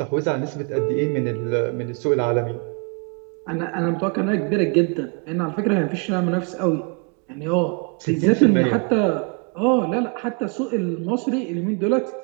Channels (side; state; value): left; quieter; 34.5 dB